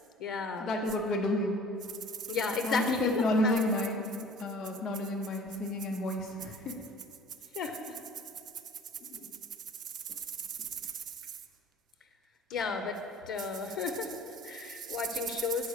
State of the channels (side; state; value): both; normal; correlation 0.47